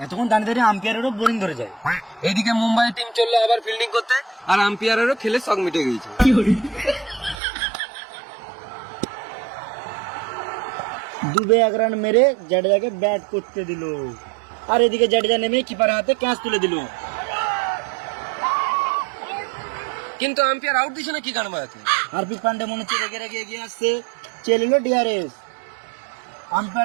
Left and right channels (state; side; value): drops out; left; at 7.4 s